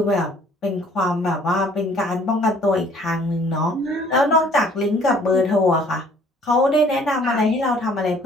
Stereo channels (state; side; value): normal; both; correlation 0.57